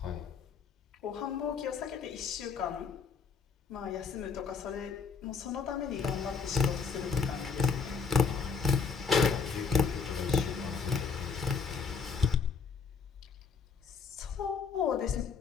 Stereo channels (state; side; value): quieter; right; 5.3 dB